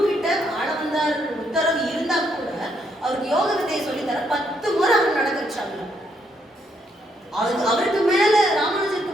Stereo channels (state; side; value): normal; both; correlation 0.74